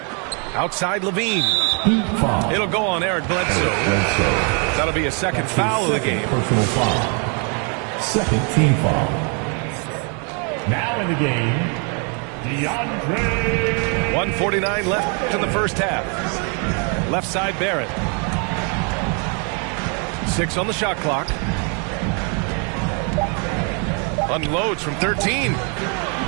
Outside Levine. It'll go on Eric Bledsoe. That'll be a second foul of the game. Personal foul. Second team foul. Now in the game, DeAndre. 1:49 left in the first half. Left side Barrett. 6 on the shot clock. Unloads from 13.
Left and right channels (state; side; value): quieter; left; 37.2 dB